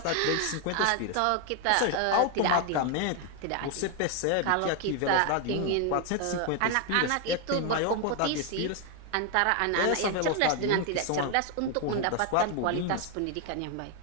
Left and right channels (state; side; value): different; both; correlation 0.01